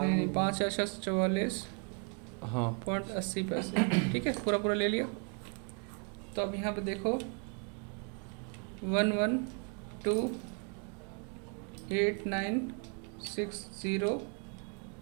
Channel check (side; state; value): left; quieter; 38.6 dB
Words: हाँ पॉइंट 80 पैसे। ठीक है, पूरा पूरा ले लिया। तो अब यहाँ पे देखो 112,8960